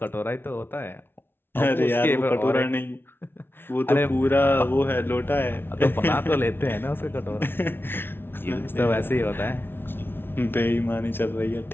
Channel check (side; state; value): right; late; 0.11 ms